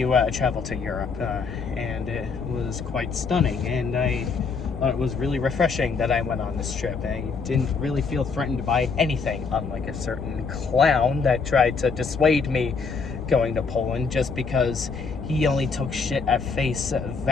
travel to Europe, and it was quite stunning, and I thought it was really refreshing that I went on this trip. I didn't really feel threatened by anything, unlike a certain clown that tried to dissuade me going to Poland just because he only took shit at face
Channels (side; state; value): right; quieter; 5.0 dB